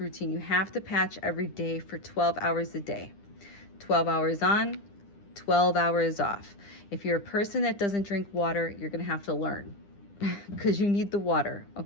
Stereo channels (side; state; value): right; late; 10 ms